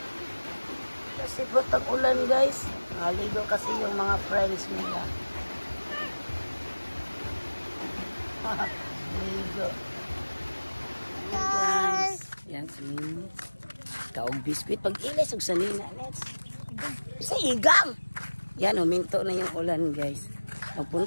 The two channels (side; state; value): both; inverted; correlation -1.00